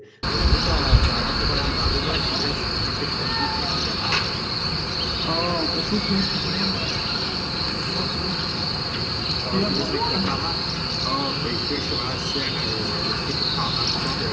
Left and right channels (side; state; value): both; identical; correlation 1.00